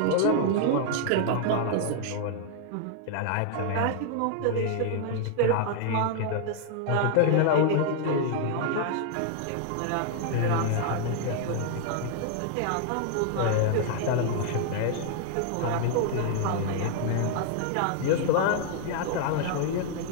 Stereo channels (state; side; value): different; both; correlation 0.00